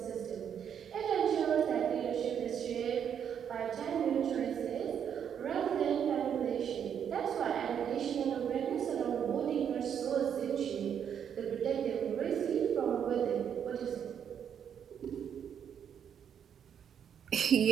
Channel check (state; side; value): quieter; left; 8.4 dB